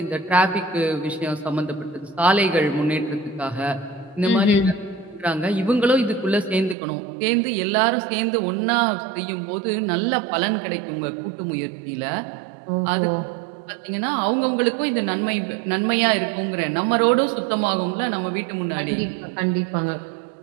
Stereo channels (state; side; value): drops out; left; at 6.8 s